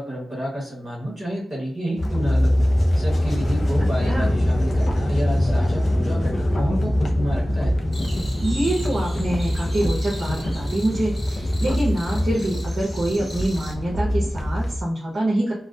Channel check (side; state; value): both; normal; correlation 0.96